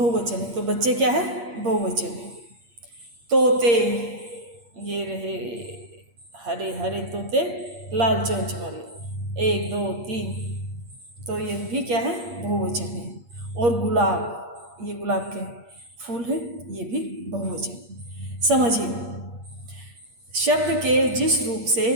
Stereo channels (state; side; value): late; left; 8.5 ms